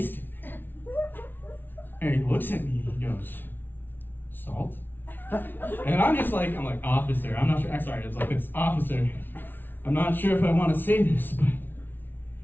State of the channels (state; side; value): late; right; 0.095 ms